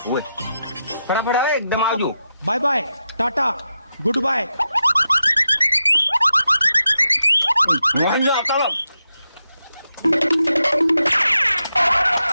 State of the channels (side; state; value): both; inverted; correlation -0.87